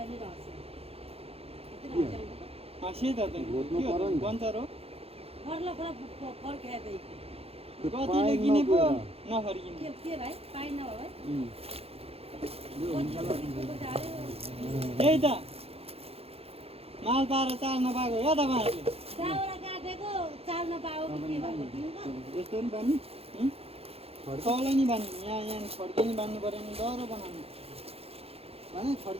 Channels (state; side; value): late; left; 0.29 ms